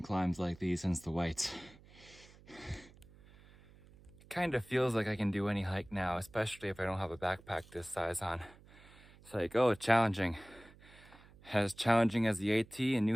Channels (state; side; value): noise; right; hum, 23 dB below the sound